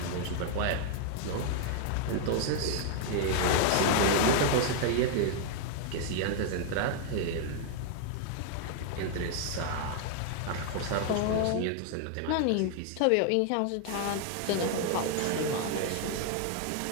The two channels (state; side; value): different; both; correlation 0.00